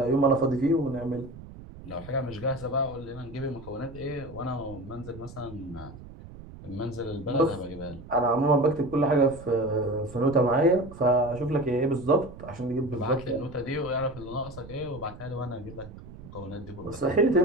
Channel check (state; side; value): noise; right; rumble, 16 dB below the sound